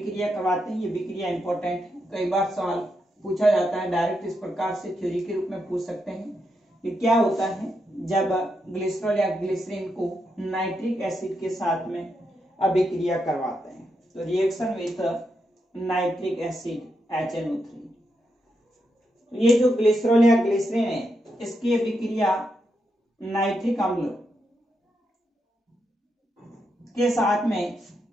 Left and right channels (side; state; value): both; normal; correlation 0.83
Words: करवाते हैं। ये अभिक्रिया इंपॉर्टेंट है, कई बार सवाल पूछा जाता है, डायरेक्ट इस प्रकार से थ्योरी के रूप में पूछ सकते हैं कि क्या होता है जब ग्लिसरॉल या ग्लिसरीन को नाइट्रिक एसिड के साथ में अभिक्रिया करवाते हैं। तो reaction with nitric acid HNO3। ये जो ग्लिसरॉल या ग्लिसरीन है इसकी अभिक्रिया नाइट्रिक अम्ल के साथ में